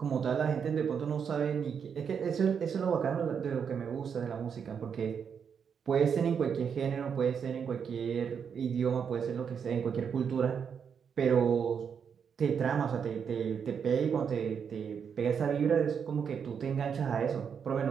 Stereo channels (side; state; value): left; quieter; 7.0 dB